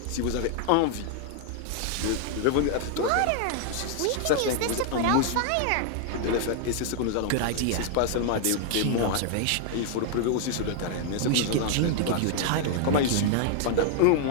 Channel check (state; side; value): different; both; correlation 0.00